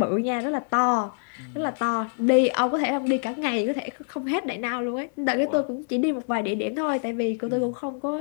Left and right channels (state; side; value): silent; right; digital silence